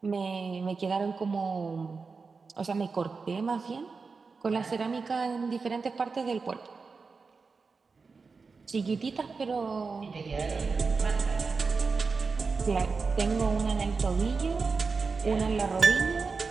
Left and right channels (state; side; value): quieter; left; 4.6 dB